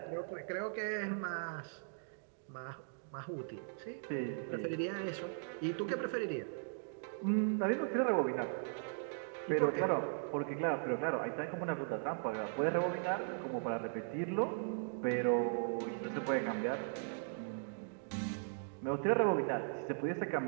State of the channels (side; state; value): left; silent; digital silence